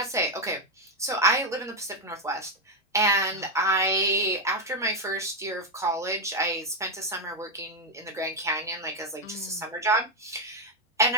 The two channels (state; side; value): normal; both; correlation 0.04